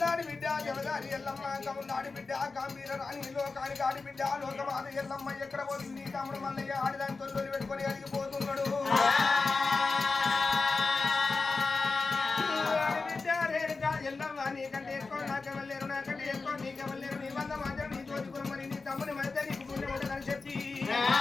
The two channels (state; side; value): quieter; right; 4.1 dB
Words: ఆడి బిడ్డ లోకమాత ఎల్లమ్మ ఎక్కడ పోతుంది నీ తమ్ముడు మల్లయ్య ఆడిదాని తొలి పెట్టుకొని అడిగిపోతున్నాడు బిడ్డ రేడుగా ఎల్లమ్మ నీకంటే ఎక్కువ నాకెవరు నాకంటే ఎక్కువ నీకెవరు లేరు నీ వంద మాత్రం నీ తోచుకుని నీ తమ్ముని మధ్య నీకు పుణ్యం ఉండదని చెప్పి